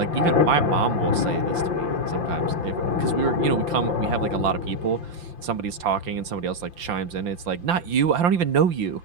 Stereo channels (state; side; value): late; left; 5.8 ms